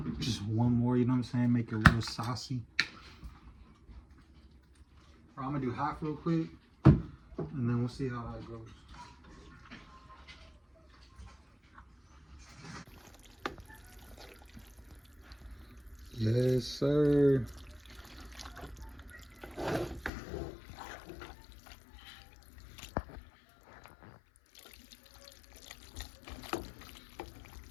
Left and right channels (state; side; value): drops out; right; at 20.1 s